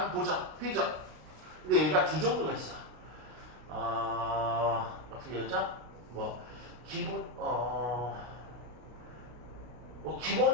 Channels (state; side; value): late; left; 33 ms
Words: 보자. 페이지. 근데 얘가 두 종류가 있어. 어떻게 하자? 뭐 기본 뭐